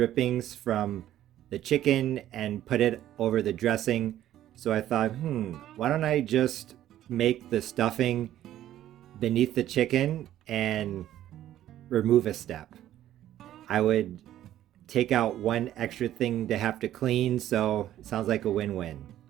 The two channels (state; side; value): quieter; left; 12.6 dB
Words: from the chicken and put it over the dressing. So I thought, why don't I just make the stuffing beneath the chicken and remove a step? I would take out one extra thing to have to clean, so it sounds like a win-win.